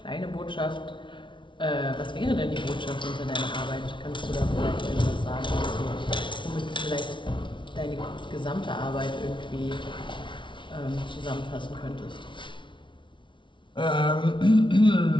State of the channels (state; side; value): late; right; 0.24 ms